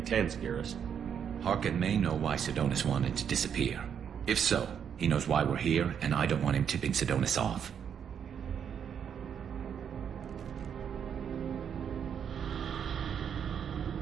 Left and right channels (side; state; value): left; quieter; 8.0 dB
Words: tense, Garrus. Harkin may know why Sidonis wanted to disappear. If so, he knows why we're here, and I don't want him tipping Sidonis off.